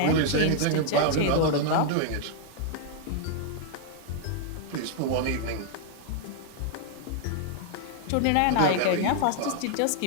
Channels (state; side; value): different; both; correlation 0.00